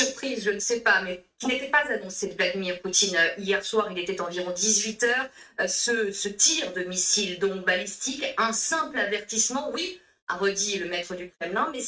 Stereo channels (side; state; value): both; identical; correlation 1.00